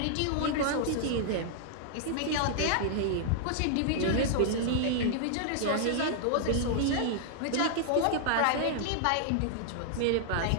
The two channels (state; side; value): different; both; correlation -0.01